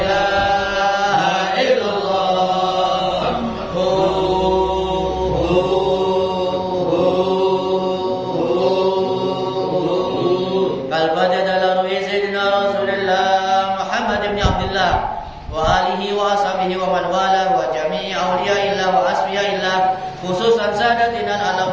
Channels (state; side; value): identical; both; correlation 1.00